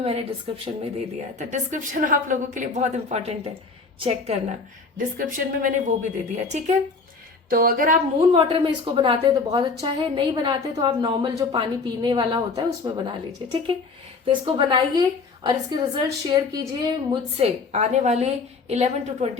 डिस्क्रिप्शन में दे दिया है, तो डिस्क्रिप्शन आप लोगों के लिए बहुत इंपॉर्टेंट है, चेक करना, डिस्क्रिप्शन में मैंने वो भी दे दिया, ठीक है। तो अगर आप मून वाटर में इसको बनाते हैं तो बहुत अच्छा है, नहीं बनाते तो आप नॉर्मल जो पानी पीने वाला होता है उसमें बना लीजिए, ठीक है। तो इसको बनाइए और इसके रिजल्ट शेयर कीजिए मुझसे आने वाले 11 to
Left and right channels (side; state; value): right; quieter; 4.3 dB